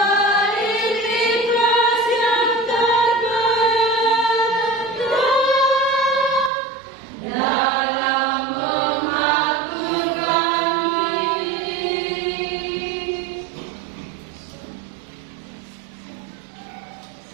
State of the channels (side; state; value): left; drops out; at 6.5 s